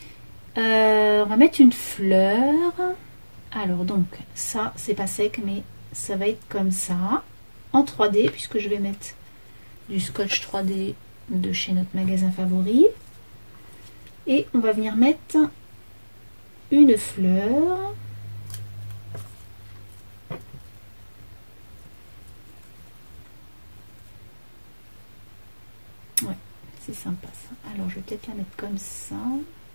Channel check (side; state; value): both; inverted; correlation -1.00